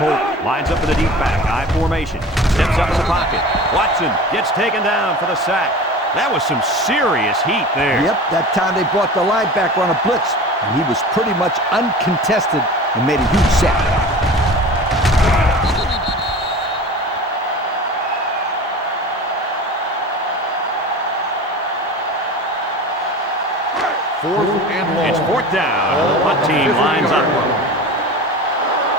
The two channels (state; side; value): normal; both; correlation 0.36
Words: Holt lines up in the deep back. I formation. Steps up in the pocket. Watson gets taken down for the sack. That was some serious heat there. Yep, that time they brought the linebacker on a blitz, and he was pretty much uncontested and made a huge sack. Fourth and long. It's fourth down. The punt team lines up.